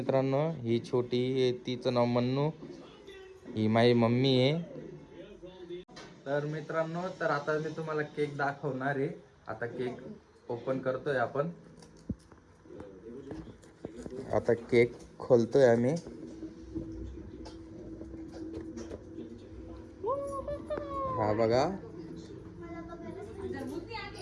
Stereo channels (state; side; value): identical; both; correlation 1.00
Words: ही छोटी आहे, तिचं नाव मन्नू. ही माझी मम्मी आहे. तर मित्रांनो, तर आता मी तुम्हाला केक दाखवणार आहे. आता केक ओपन करतोय आपण. आता केक खोलतोय आम्ही. हा बघा.